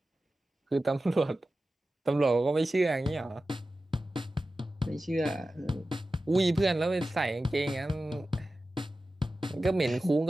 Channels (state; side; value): normal; both; correlation 0.94